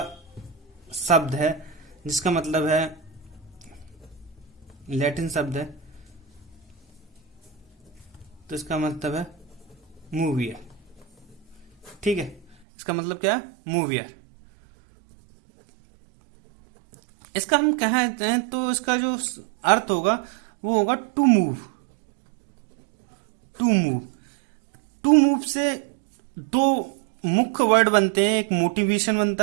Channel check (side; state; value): left; drops out; at 12.6 s